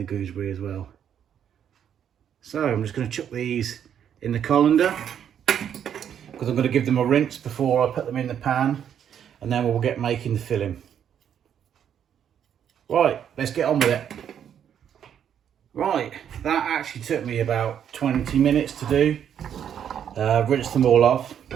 gooseberry as well. So I'm just going to chuck these in the colander because I'm going to give them a rinse before I put them in the pan, and then we'll get making the filling. Right, let's get on with it. Right, that actually took me about 20 minutes to do. Rinse them all off.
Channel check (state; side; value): quieter; left; 9.0 dB